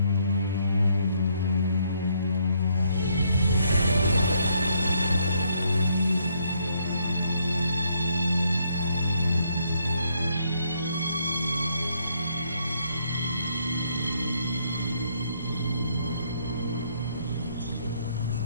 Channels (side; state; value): both; inverted; correlation -0.71